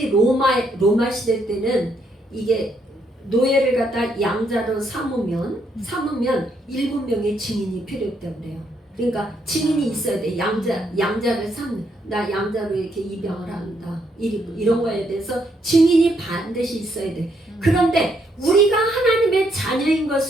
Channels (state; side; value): normal; both; correlation 0.74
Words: 로마 시대 때는 이게 노예를 갖다 양자로 삼으면 7명의 증인이 필요했다고 그래요. 그러니까 증인이 있어야 돼. 양자를 나 양자로 이렇게 입양을 한다. 이런 거에 대해서 증인이 반드시 있어야 돼. 그런데 우리가 하나님의 자녀인